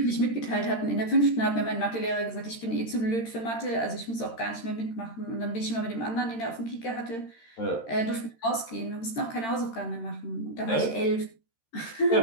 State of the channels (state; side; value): late; right; 13 ms